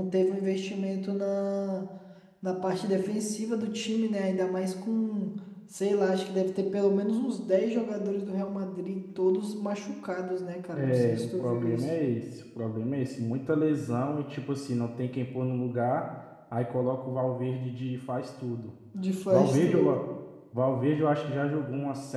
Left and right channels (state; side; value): identical; both; correlation 1.00